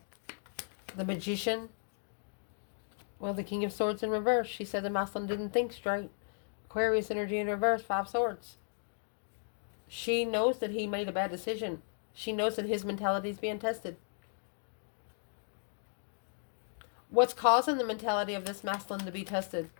The magician. Well, the King of Swords in reverse. She said the masculine didn't think straight. Aquarius energy in reverse, 5 swords. She knows that he made a bad decision. She knows that his mentality is being tested. What's causing the mentality of this masculine to be tested?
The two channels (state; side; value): silent; right; digital silence